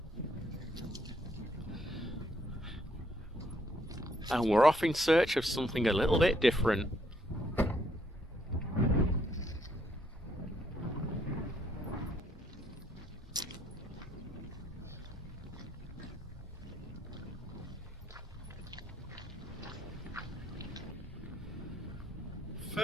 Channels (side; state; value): both; normal; correlation 0.70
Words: And we're off in search of something a little bit different.